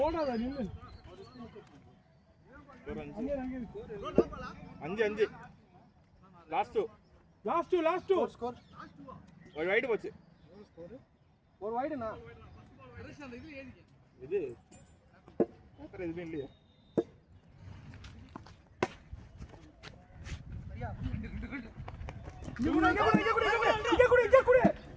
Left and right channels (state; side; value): identical; both; correlation 1.00